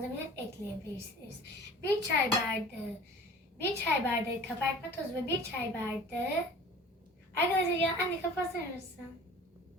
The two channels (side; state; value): both; normal; correlation 0.43